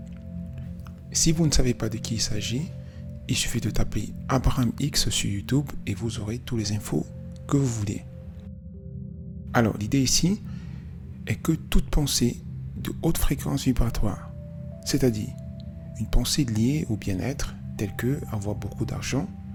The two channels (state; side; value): identical; both; correlation 1.00